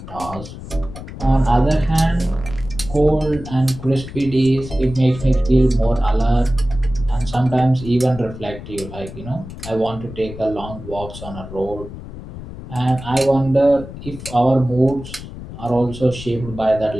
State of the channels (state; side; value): noise; left; rumble, 12 dB below the sound